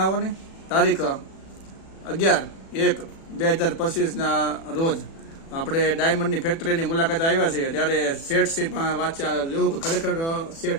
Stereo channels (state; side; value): late; right; 36 ms